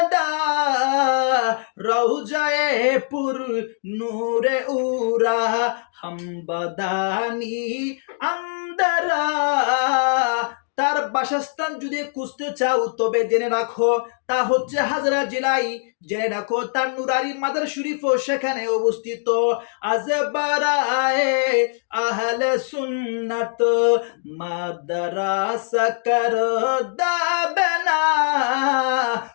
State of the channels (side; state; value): right; silent; digital silence